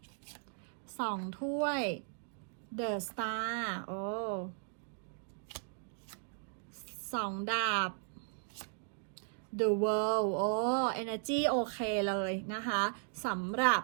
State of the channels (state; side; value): silent; left; digital silence